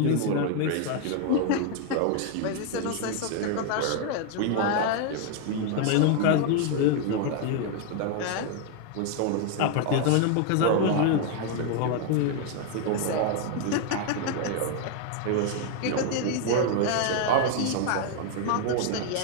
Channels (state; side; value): different; both; correlation 0.01